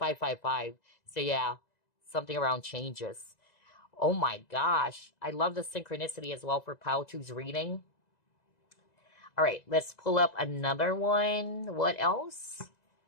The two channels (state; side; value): late; right; 2.0 ms